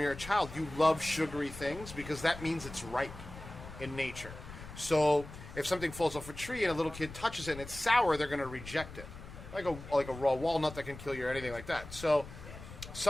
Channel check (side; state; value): left; noise; rumble, 13 dB below the sound